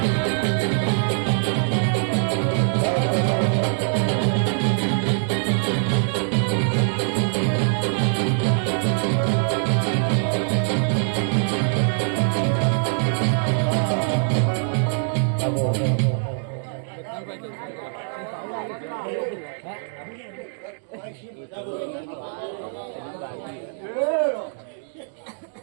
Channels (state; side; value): silent; left; 63 dB below the other